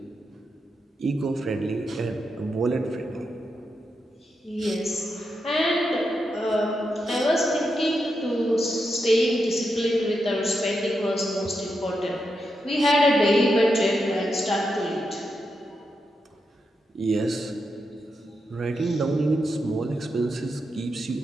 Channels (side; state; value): both; normal; correlation 0.85